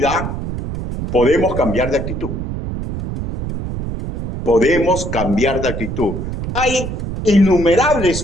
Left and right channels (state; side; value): noise; right; rumble, 5 dB below the sound